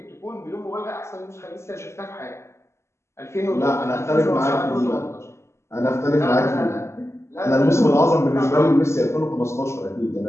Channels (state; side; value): late; right; 0.13 ms